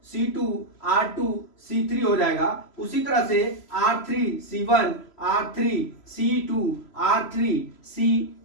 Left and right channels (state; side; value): late; right; 3.0 ms